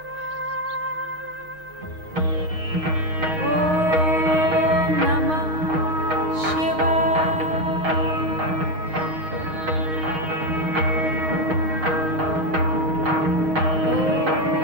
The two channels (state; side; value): late; left; 9.6 ms